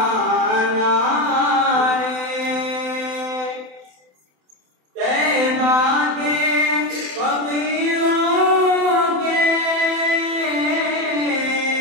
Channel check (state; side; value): late; left; 27 ms